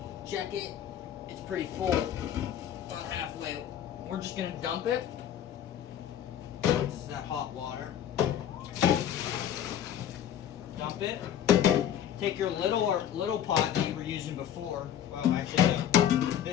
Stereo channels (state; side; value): quieter; right; 10.2 dB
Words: Check it. It's pretty full. About halfway. We're just going to dump it. This is that hot water. Dump it. Take your little pot that you were using before. Well, actually, no.